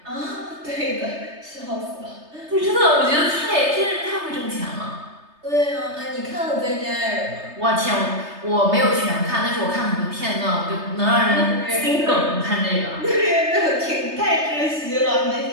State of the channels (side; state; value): left; late; 3.3 ms